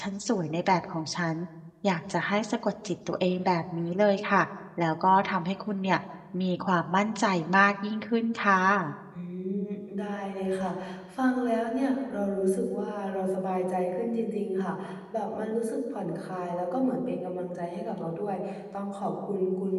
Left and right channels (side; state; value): both; identical; correlation 1.00